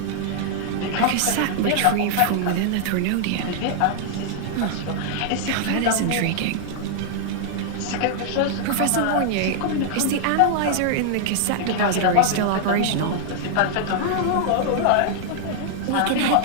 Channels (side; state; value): both; different; correlation 0.00